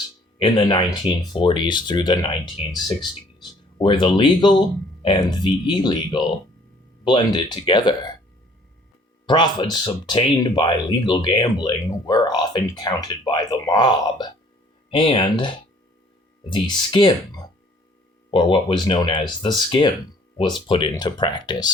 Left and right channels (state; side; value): normal; both; correlation 0.57